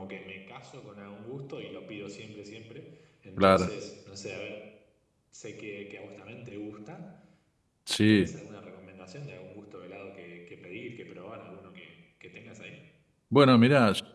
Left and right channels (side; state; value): both; identical; correlation 1.00